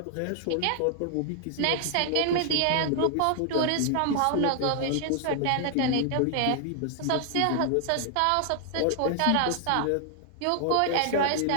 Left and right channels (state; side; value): different; both; correlation 0.00